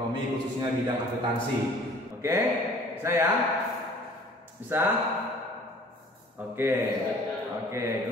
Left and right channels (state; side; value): normal; both; correlation 0.50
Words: khususnya bidang akuntansi. Oke, saya bisa? Oke,